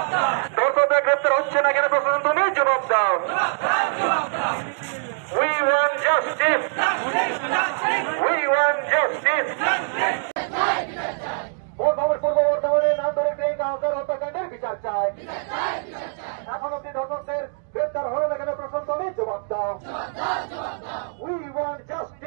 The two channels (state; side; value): silent; left; digital silence